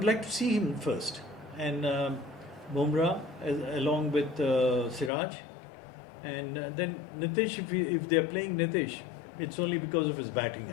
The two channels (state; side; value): drops out; right; at 5.1 s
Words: like to see him first. And Bumrah along with Siraj. And then Nitish, if they're playing Nitish, it's only because of his batting, I